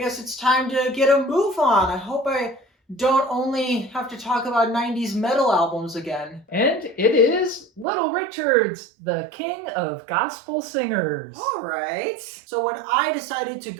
it's time to get a move on. I hope I don't only have to talk about 90s metal albums again. And it is Little Richard's, the king of gospel singers. All right. So when I decided to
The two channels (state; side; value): drops out; left; at 7.9 s